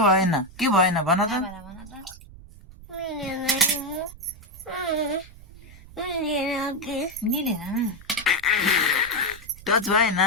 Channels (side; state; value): right; noise; rumble, 19 dB below the sound